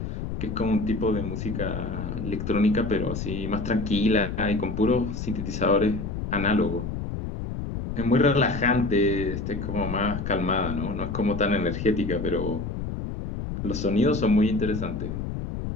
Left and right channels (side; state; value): left; noise; rumble, 5 dB below the sound